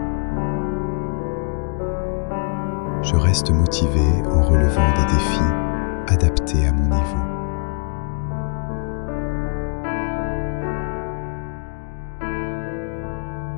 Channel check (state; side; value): quieter; right; 37.5 dB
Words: Je reste motivé en relevant des défis adaptés à mon niveau.